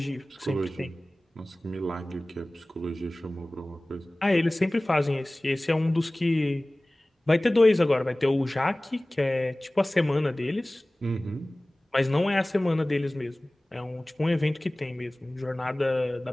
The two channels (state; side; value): normal; both; correlation 0.98